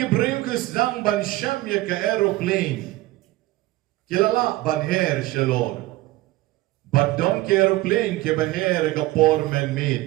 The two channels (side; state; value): left; quieter; 18.2 dB